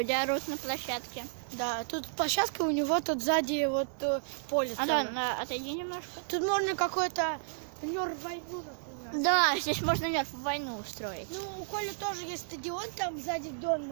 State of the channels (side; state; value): left; silent; digital silence